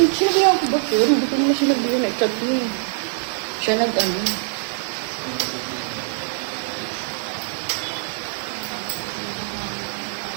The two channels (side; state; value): left; silent; 63 dB below the other